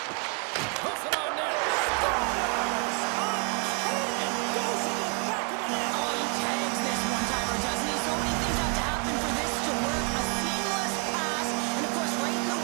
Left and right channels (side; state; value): left; quieter; 37.8 dB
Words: Puts it on net. Scores! And goes in the back of the net. Oh, he tags this one-timer, doesn't he? So many things have to happen for this to work. A seamless pass, and of course right in the